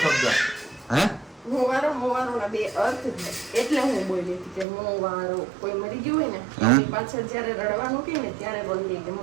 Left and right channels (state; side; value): drops out; left; at 4.7 s